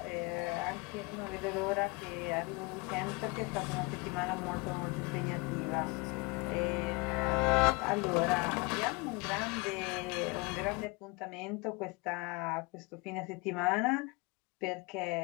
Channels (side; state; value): right; quieter; 27.1 dB